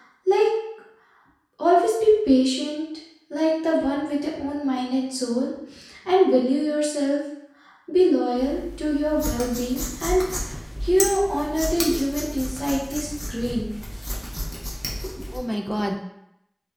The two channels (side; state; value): both; identical; correlation 1.00